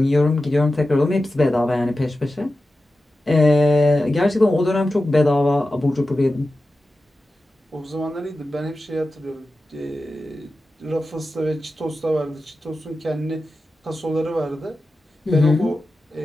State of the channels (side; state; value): both; normal; correlation 0.93